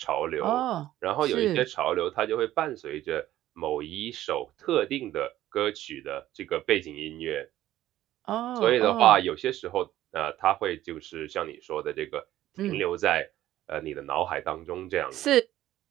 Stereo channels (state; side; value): quieter; left; 13.9 dB